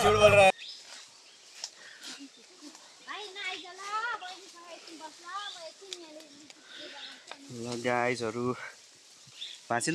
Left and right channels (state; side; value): identical; both; correlation 1.00